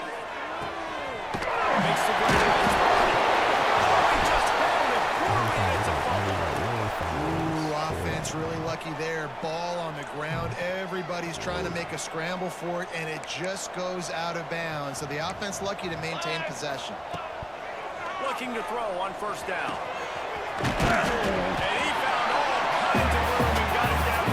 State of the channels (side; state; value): both; identical; correlation 1.00